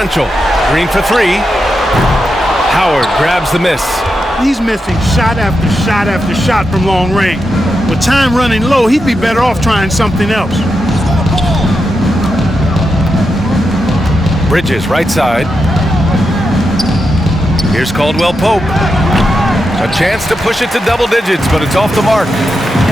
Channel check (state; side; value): normal; both; correlation 0.87